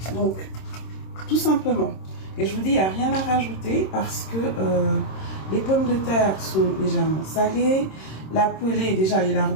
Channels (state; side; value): late; right; 26 ms